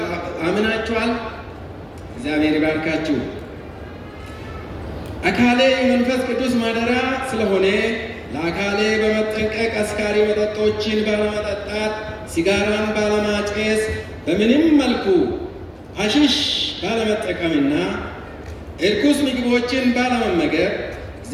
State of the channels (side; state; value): both; identical; correlation 1.00